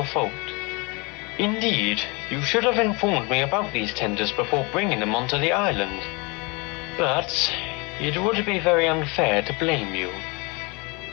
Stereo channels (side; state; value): right; quieter; 28.5 dB